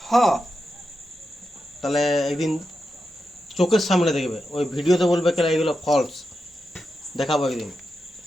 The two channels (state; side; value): normal; both; correlation 0.88